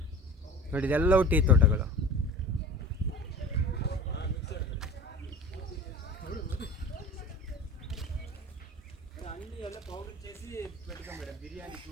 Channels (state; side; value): normal; both; correlation 0.37